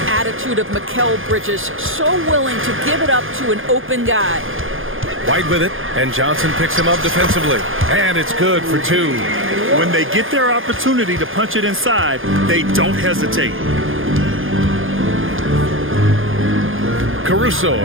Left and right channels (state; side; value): late; left; 0.59 ms